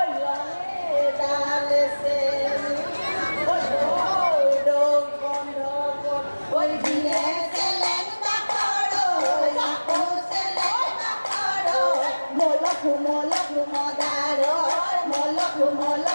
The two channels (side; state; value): both; inverted; correlation -1.00